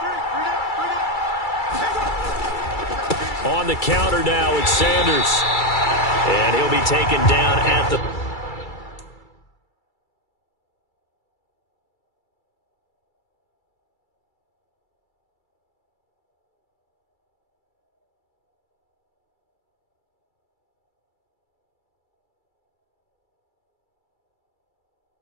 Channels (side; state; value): right; late; 2.3 ms